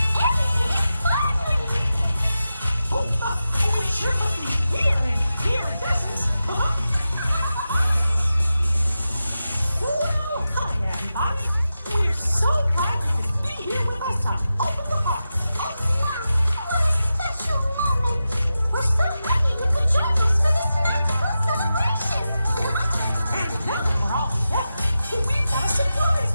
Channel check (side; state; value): both; inverted; correlation -0.91